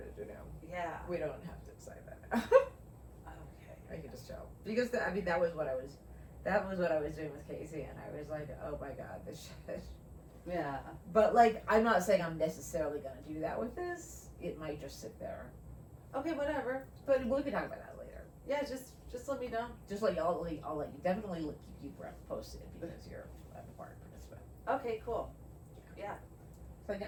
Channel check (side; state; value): both; identical; correlation 1.00